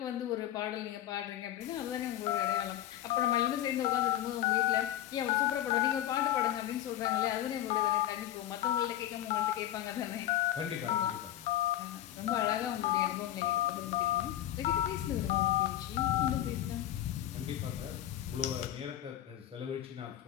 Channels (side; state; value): right; quieter; 12.7 dB